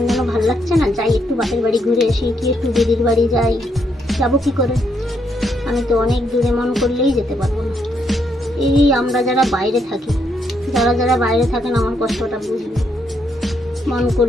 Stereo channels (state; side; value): normal; both; correlation 0.76